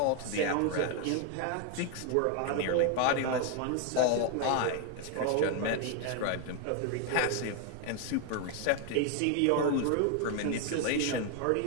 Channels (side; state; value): both; different; correlation 0.01